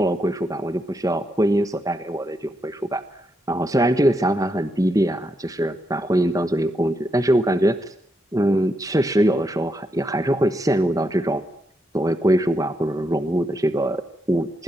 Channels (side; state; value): both; normal; correlation 0.81